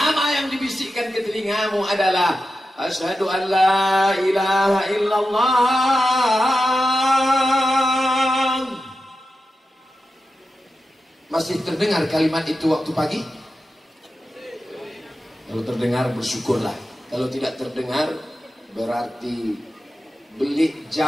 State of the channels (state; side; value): normal; both; correlation 0.91